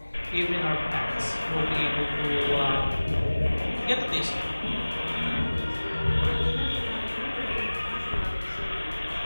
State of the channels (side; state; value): both; inverted; correlation -1.00